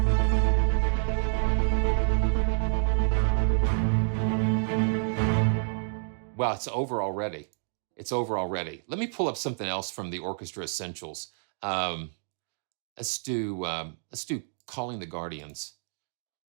Wow, it's over already. It's over already. Let me pull up something else from the Orchestra Essentials. Let's do Calling the Guardians.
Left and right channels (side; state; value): left; silent; digital silence